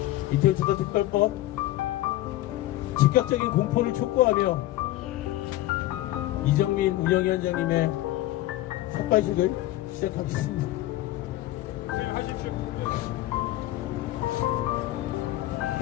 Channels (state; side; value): quieter; right; 16.0 dB